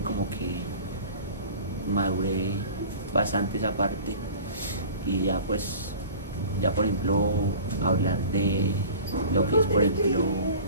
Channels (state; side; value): inverted; both; correlation -0.41